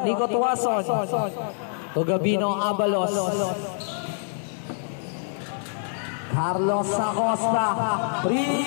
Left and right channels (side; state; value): right; silent; digital silence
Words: Nico Tuason. To Gabino Abalos. Carlos Acosta.